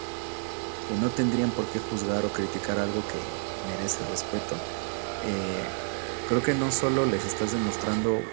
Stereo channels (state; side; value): silent; left; 58 dB below the other